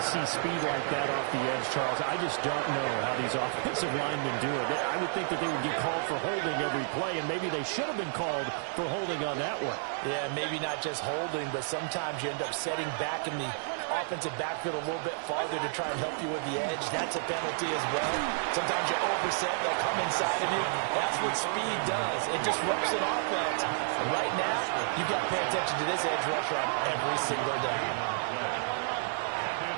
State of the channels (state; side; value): silent; left; 57 dB below the other